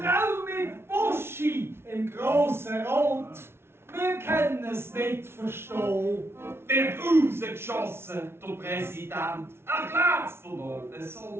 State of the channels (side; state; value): left; late; 0.12 ms